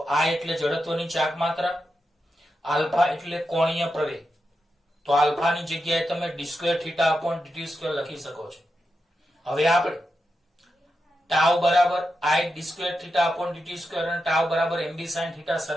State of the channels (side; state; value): both; normal; correlation 0.88